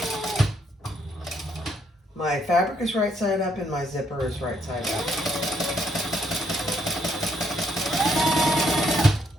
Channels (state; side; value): normal; both; correlation 0.72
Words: My fabric is right side up and my zipper is right side up.